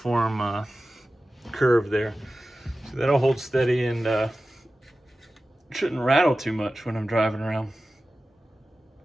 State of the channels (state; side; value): normal; both; correlation 0.95